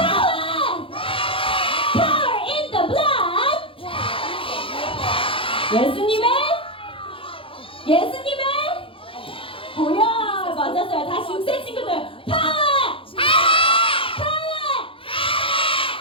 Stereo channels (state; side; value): late; right; 0.26 ms